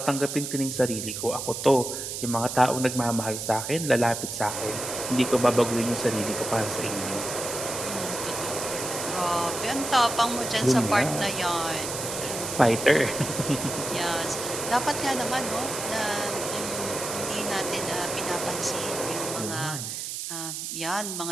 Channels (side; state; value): right; noise; hiss, 5 dB below the sound